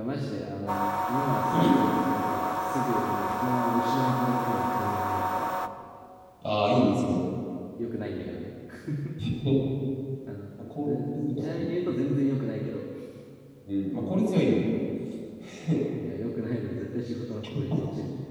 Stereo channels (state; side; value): identical; both; correlation 1.00